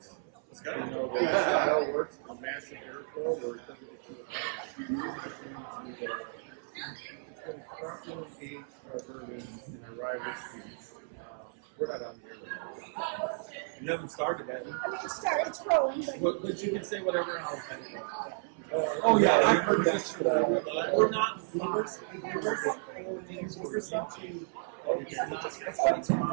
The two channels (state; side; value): silent; left; 56 dB below the other